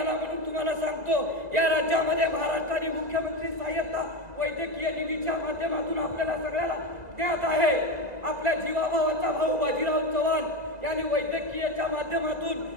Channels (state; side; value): late; left; 1.9 ms